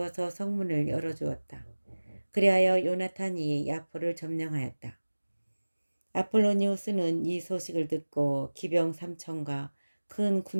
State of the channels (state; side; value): inverted; both; correlation -1.00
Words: 성문을 열어주었다. 그리하여 요나탄이 야포를 점령하였다. 아폴로니우스는 이 소식을 듣고 기병 3천과 큰